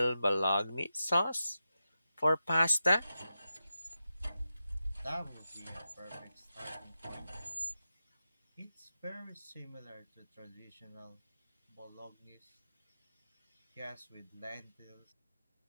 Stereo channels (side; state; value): both; inverted; correlation -0.91